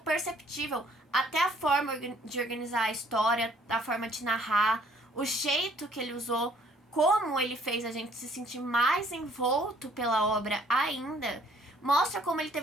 até a forma de organizar a história, a forma de narrar, o jeito que ele usou, como ele fez a gente se sentir mais envolto pela obra ainda, mostra como ele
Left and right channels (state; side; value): normal; both; correlation 0.60